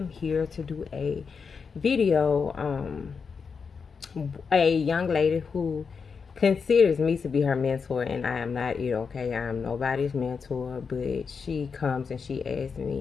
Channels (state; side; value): quieter; right; 5.6 dB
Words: here to do a video. A young lady who considers me to be her mentor, and I am not it. Okay, I am nobody's mentor, but she comes and she asks